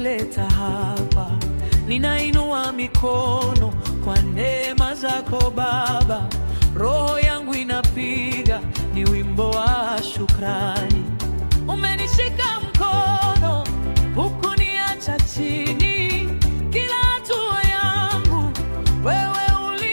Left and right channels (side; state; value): both; inverted; correlation -1.00